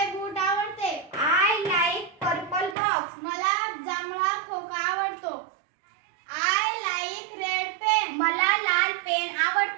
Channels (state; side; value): drops out; left; at 2.8 s